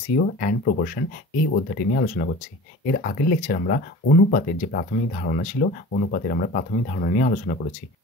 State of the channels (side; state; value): both; normal; correlation 0.38